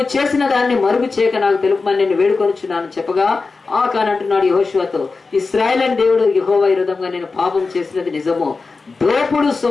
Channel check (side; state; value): right; quieter; 4.1 dB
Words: చేసిన దాన్ని మరుగు చేయక నాకు తెలుపమని నేను వేడుకొనుచున్నాను చెప్పగా ఆకాను అంటున్నాడు యెహోషువతో, ఇశ్రాయేలు అని దేవుడు యెహోవా విరోధంగా నేను పాపం చేసినది నిజము. దోపుడు